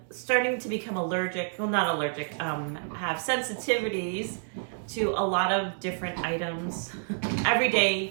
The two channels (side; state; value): left; silent; 59 dB below the other